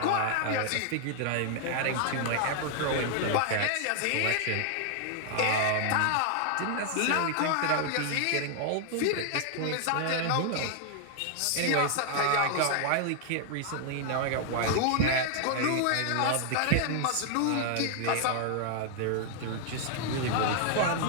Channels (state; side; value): different; both; correlation 0.00